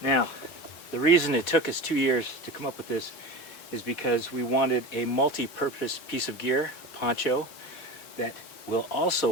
Now, the reason it took us 2 years to come up with this is because we wanted a multi-purpose piece of gear, a poncho, that will also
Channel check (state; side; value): late; right; 4.1 ms